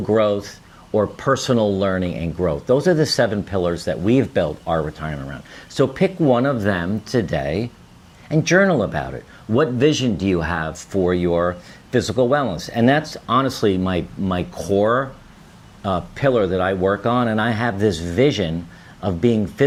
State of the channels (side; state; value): both; identical; correlation 1.00